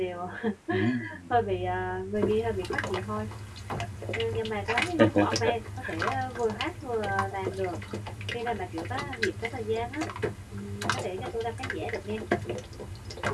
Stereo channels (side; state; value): both; identical; correlation 1.00